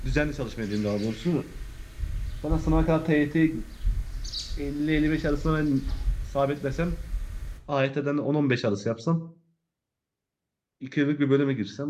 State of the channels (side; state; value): both; identical; correlation 1.00